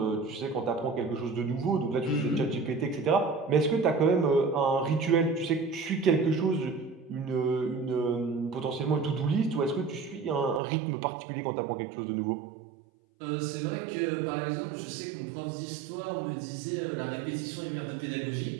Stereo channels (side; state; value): left; drops out; at 10.6 s